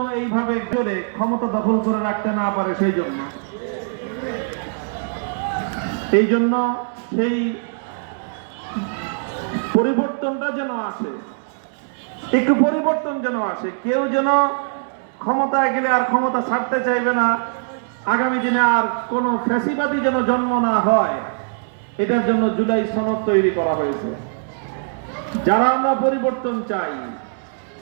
এইভাবে জোরে ক্ষমতা দখল করে রাখতে না পারে এই জন্য সেই পরিবর্তনটা যেন আসে, একটু পরিবর্তন যেন আসে। কেউ যেন ক্ষমতায় গেলে আর ক্ষমতা ছাড়তে চাইবে না, আগামী দিনে আর কোন ফ্যাসিবাদী যেন জন্ম না হয়, এটার জন্য জুলাই সনদ তৈরি করা হয়েছে। যারা আমরা পরিবর্তন চাই,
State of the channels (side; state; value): left; silent; 63 dB below the other